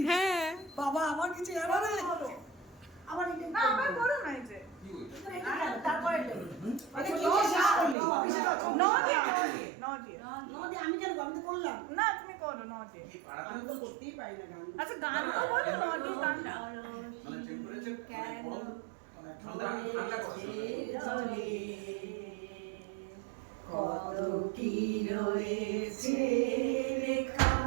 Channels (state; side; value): drops out; left; at 8.0 s